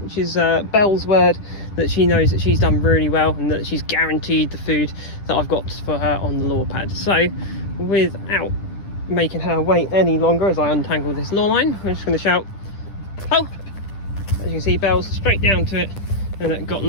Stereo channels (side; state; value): right; late; 10 ms